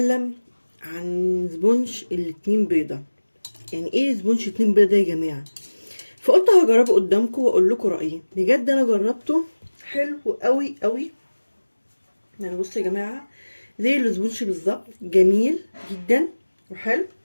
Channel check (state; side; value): inverted; both; correlation -1.00